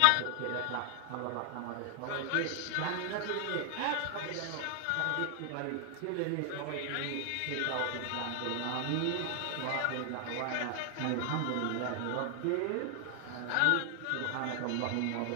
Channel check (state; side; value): different; both; correlation 0.00